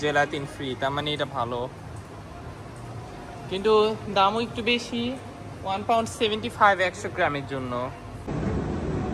জেলাটিন ফ্রি, তার মানে এটা ভালো, কিন্তু দামও একটু বেশি। £1.75 100 গ্রামের জন্য।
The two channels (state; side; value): identical; both; correlation 1.00